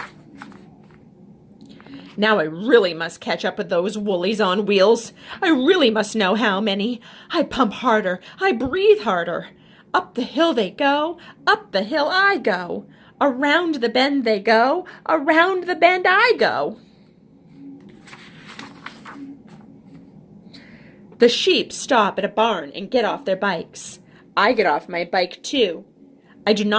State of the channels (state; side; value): identical; both; correlation 1.00